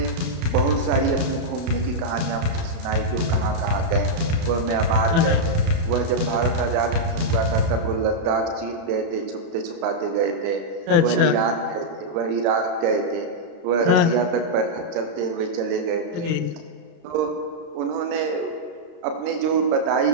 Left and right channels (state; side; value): late; left; 34 ms